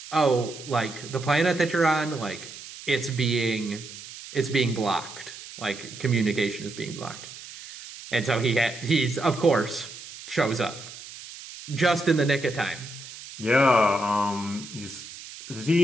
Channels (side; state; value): right; noise; hiss, 14 dB below the sound